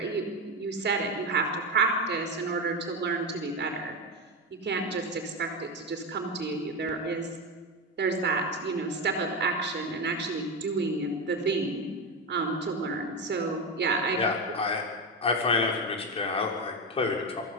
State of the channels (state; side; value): normal; both; correlation 0.15